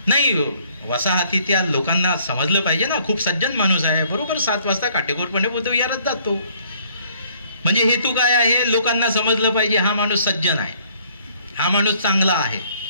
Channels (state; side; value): inverted; both; correlation -0.62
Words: नाही, वसाहतीतल्या लोकांना समजलं पाहिजे ना, खूप सज्जन माणूस आहे, बरोबर 7 वाजता काटेकोरपणे बुद्ध विहारात जातो. म्हणजे हेतू काय आहे? लोकांना समजलं पाहिजे हा माणूस सज्जन आहे, हा माणूस चांगला आहे,